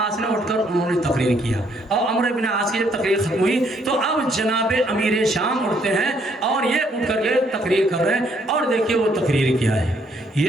نے اٹھ کر انہوں نے تقریر کیا، اور عمرو بن عاص کی جب تقریر ختم ہوئی تو اب جناب امیر شام اٹھتے ہیں اور یہ اٹھ کر کے تقریر کر رہے ہیں، اور دیکھیے وہ تقریر کیا ہے،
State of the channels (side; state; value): both; normal; correlation 0.69